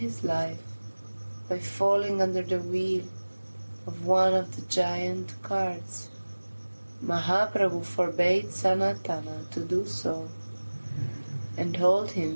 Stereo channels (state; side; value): inverted; both; correlation -1.00